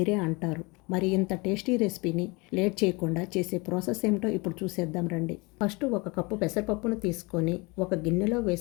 అంటారు. మరి ఇంత టేస్టీ రెసిపీని లేట్ చేయకుండా చేసే ప్రాసెస్ ఏమిటో ఇప్పుడు చూసేద్దాం రండి. ఫస్ట్ ఒక కప్పు పెసరపప్పును తీసుకొని ఒక గిన్నెలో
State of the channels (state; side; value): quieter; right; 26.5 dB